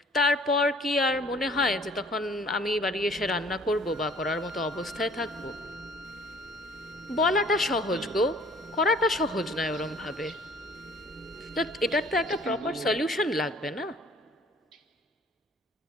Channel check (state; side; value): normal; both; correlation 0.54